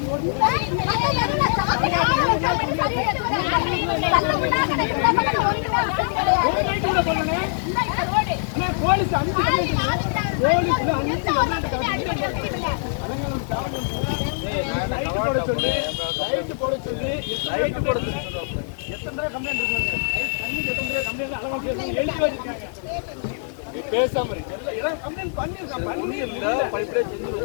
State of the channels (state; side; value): silent; right; digital silence